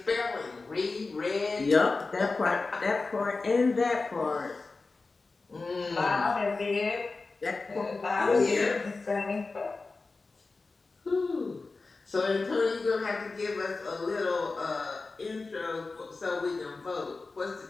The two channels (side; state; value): right; quieter; 3.8 dB